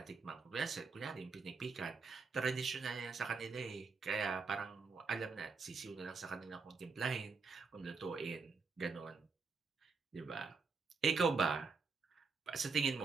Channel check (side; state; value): left; quieter; 4.7 dB